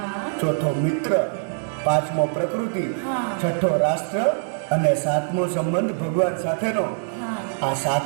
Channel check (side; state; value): left; silent; digital silence